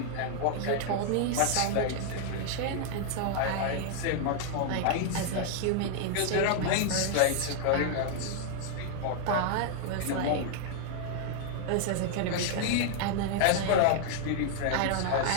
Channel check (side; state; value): both; different; correlation -0.01